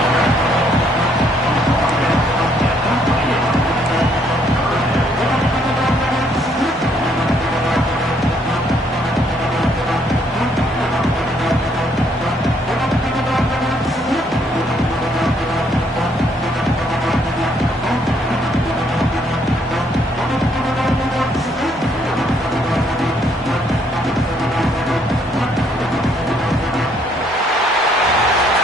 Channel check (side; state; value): both; normal; correlation 0.68